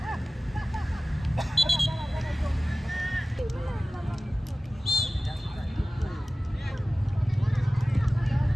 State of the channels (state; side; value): normal; both; correlation 0.97